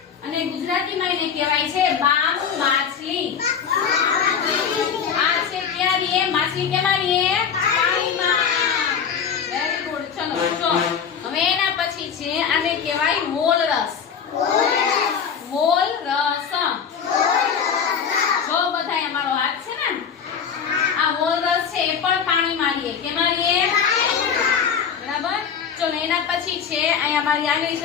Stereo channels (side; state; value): right; quieter; 7.0 dB